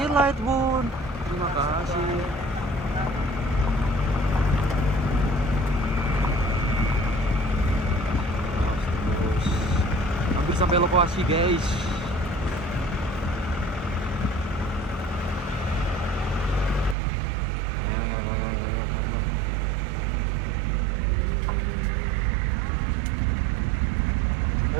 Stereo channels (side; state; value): left; drops out; at 16.9 s